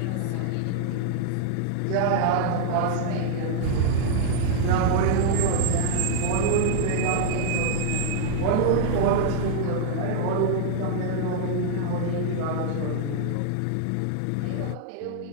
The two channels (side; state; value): both; different; correlation 0.00